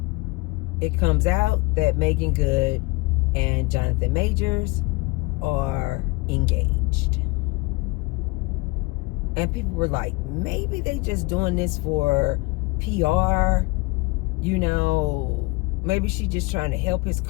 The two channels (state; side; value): quieter; right; 24.1 dB